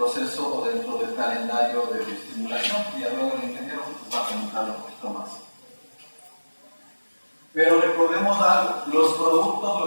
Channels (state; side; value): inverted; both; correlation -1.00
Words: o dentro del calendario de bioestimulación, y luego el ingeniero pues, va a comentar un poquito más. Pero recordemos algo, los productos